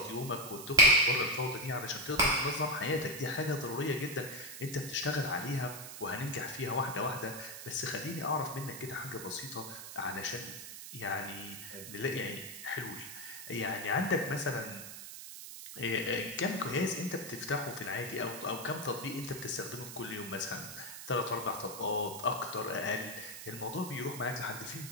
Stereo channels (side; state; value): right; noise; hiss, 10 dB below the sound